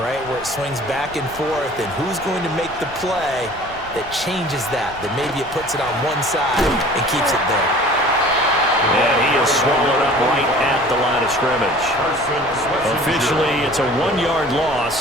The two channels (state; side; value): noise; left; rumble, 19 dB below the sound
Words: Where it swings back and forth, and who's going to make the play that changes that maybe it puts it on one side and keeps it there. And he is swallowed up right at the line of scrimmage. Officially, it's a 1-yard